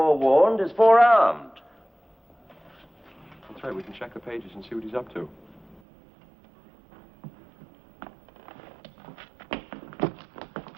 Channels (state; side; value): drops out; left; at 5.8 s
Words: is forearmed. That's right, we can check the pages and see what he's up to.